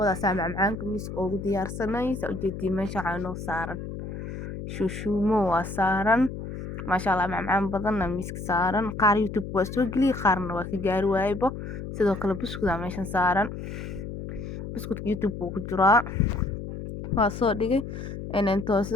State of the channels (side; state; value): left; noise; hum, 8 dB below the sound